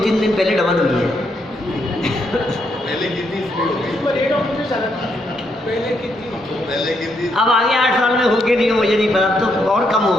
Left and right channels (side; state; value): both; normal; correlation 0.77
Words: दिन पहले डबल हुई है। अब आगे 8 साल में होके नहीं, मुझे नहीं पता, तो और कम हो